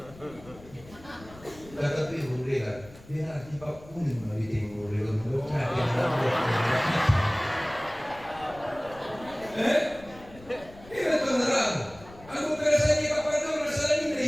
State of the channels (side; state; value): left; noise; rumble, 20 dB below the sound